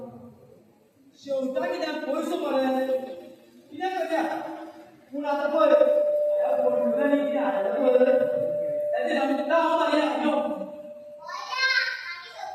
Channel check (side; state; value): both; identical; correlation 1.00